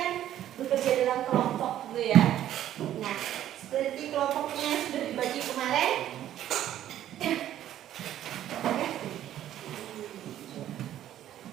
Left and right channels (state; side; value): quieter; left; 12.0 dB